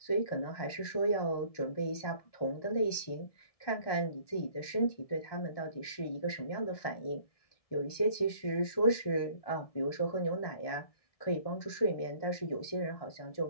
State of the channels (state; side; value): late; right; 1.7 ms